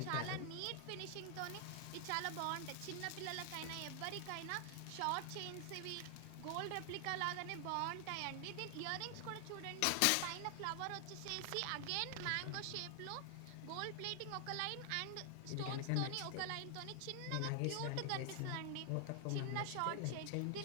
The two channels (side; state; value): both; different; correlation 0.00